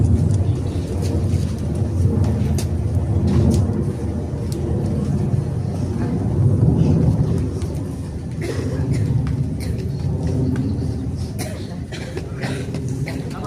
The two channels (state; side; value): identical; both; correlation 1.00